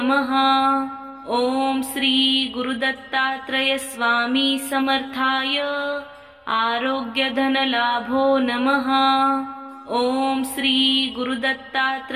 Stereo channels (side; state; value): both; identical; correlation 1.00